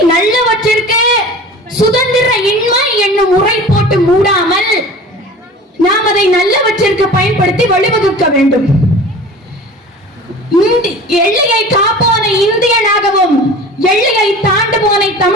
நல்லவற்றிற்கு சுதந்திர இன்மை என்னும் முறை போட்டு மூடாமல் நாம் அதை நல்லவற்றிற்கு பயன்படுத்தி வழிவகுக்க வேண்டும். எல்லையை காப்போனை இந்தியனாகவும் எல்லையை தாண்டுவோனை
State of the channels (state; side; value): normal; both; correlation 0.39